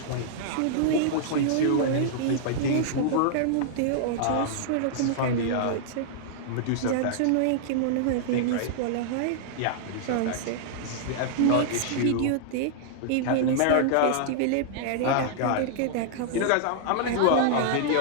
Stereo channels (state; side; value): different; both; correlation -0.01